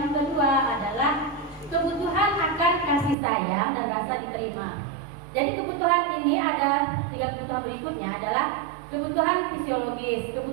kedua adalah kebutuhan akan kasih sayang dan rasa diterima. Jadi kebutuhan ini ada 3 kebutuhan berikutnya adalah kebutuhan fisiologis,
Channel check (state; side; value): drops out; left; at 3.2 s